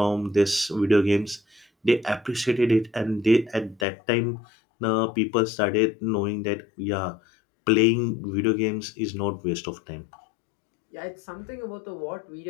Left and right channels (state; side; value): drops out; right; at 3.9 s